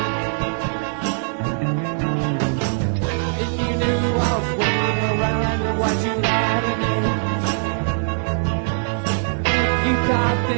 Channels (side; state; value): left; silent; digital silence